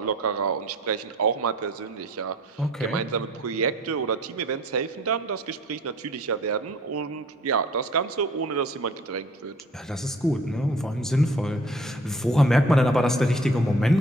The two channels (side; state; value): both; normal; correlation 0.51